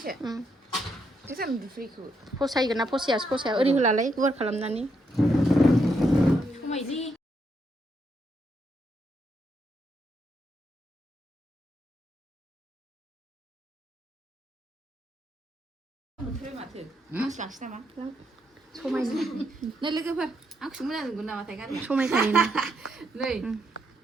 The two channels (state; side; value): normal; both; correlation 0.78